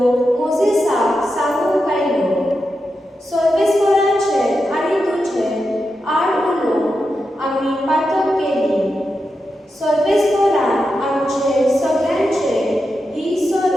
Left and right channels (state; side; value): normal; both; correlation 0.88